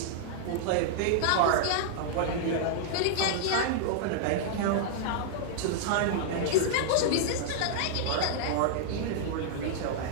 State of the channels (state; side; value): different; both; correlation -0.01